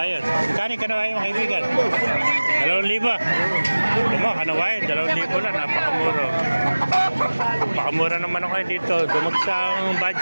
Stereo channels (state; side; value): inverted; both; correlation -1.00